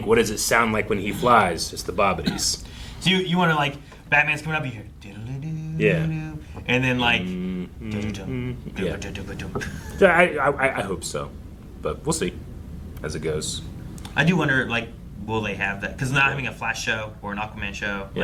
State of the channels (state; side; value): identical; both; correlation 1.00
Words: what does it sound like when he flies? It's the Bobbities. So you want to, like, Batman's coming up, you hear, yeah, and then like, I hope so, but we'll see as it goes. I do wonder, like, will they have that? Because not having a Flash show or an Aquaman show,